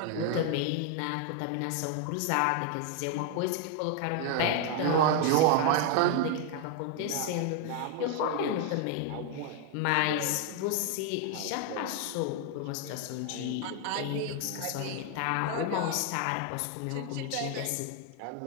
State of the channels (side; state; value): both; different; correlation 0.00